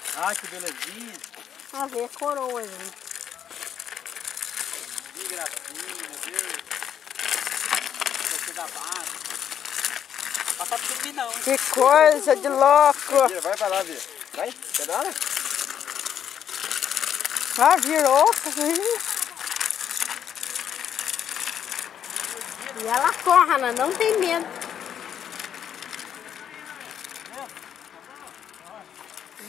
Ai, que belezinha. A ver a coroa, gente. Que gracinha, meu Deus. Você dá base. Passa por mim não, hein? Que coisa de louco. Vira, vai pra lá, Vira. Vai, pedala. Ah, virou. E ela corre, ela não tem medo.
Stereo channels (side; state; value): right; quieter; 9.0 dB